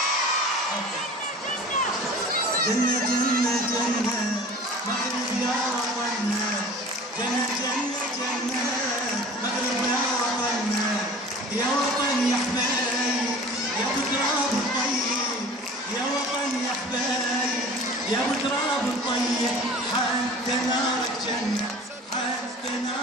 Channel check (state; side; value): normal; both; correlation 0.42